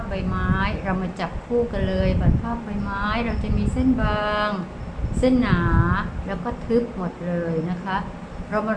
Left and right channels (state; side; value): identical; both; correlation 1.00